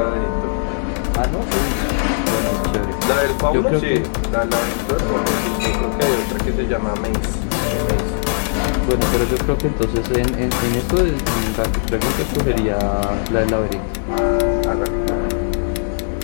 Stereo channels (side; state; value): right; silent; digital silence